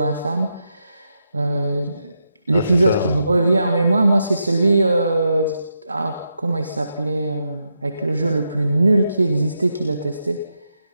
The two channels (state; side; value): inverted; both; correlation -0.84